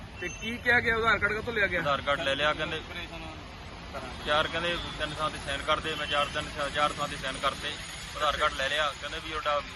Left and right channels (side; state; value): both; identical; correlation 1.00